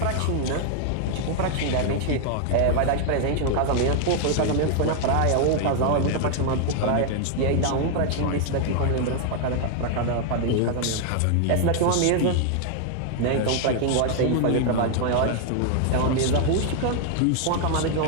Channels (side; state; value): both; different; correlation 0.00